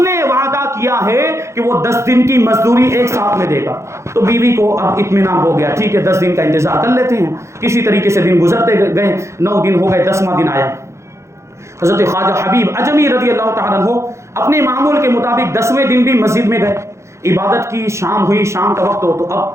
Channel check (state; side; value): late; left; 0.14 ms